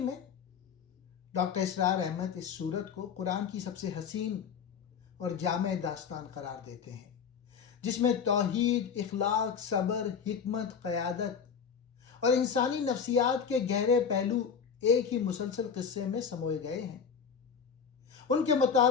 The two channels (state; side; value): quieter; right; 6.7 dB